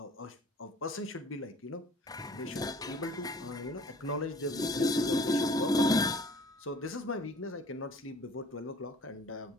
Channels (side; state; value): both; normal; correlation 0.51